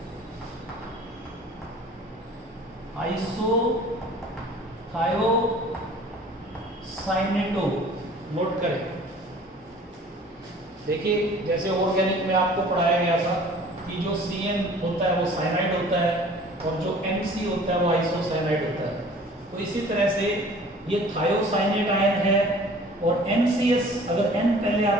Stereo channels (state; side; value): normal; both; correlation 0.48